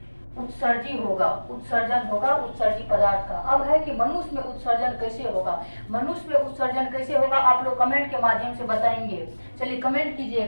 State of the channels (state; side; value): inverted; both; correlation -1.00